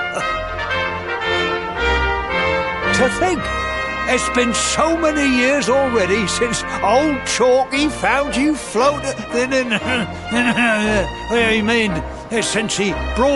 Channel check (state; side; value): identical; both; correlation 1.00